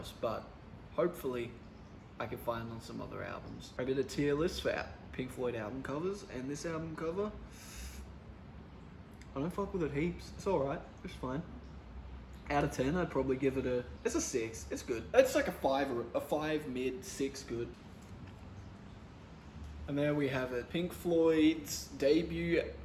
but hopefully I can find on some other albums. I did a tier list for Pink Floyd album covers, and this album cover, I don't fuck with it heaps. It's alright, it's fine. Out of 10, I'd probably give it it's a 6, it's good. It's like a 5 mid, 6 good. And there we have it, Pink Floyd's debut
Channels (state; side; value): identical; both; correlation 1.00